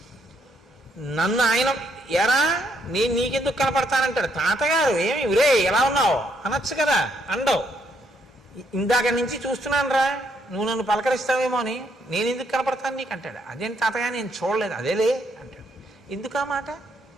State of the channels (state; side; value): normal; both; correlation 0.73